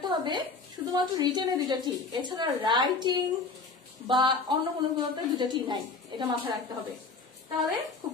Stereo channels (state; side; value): quieter; right; 4.1 dB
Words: হবে শুধুমাত্র রিটেনে দুটা ঠিক, এছাড়া রাইটিং বা অন্য কোনো কোনোতে দুটা ঠিক নাই, এটা মাথায় রাখতে হবে। তাহলে খুব